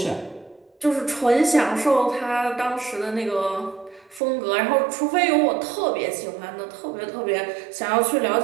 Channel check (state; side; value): drops out; left; at 4.2 s